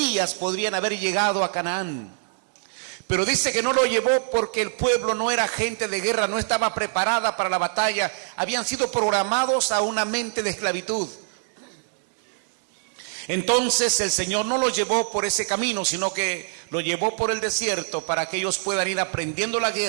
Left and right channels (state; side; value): silent; left; digital silence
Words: podrían haber llegado a Canaán. Pero dice que no lo llevó porque el pueblo no era gente de guerra, no estaba preparada para la batalla, habían sido programados a una mente de esclavitud. Entonces el Señor no lo llevó por ese camino, sino que lo llevó por el desierto para que ellos puedan ir aprendiendo la